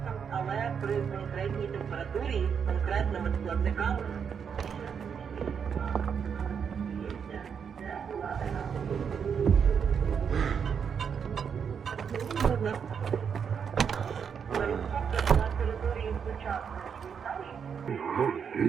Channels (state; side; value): quieter; left; 7.0 dB